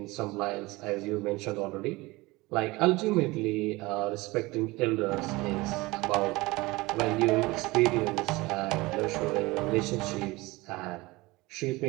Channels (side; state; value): left; quieter; 21.9 dB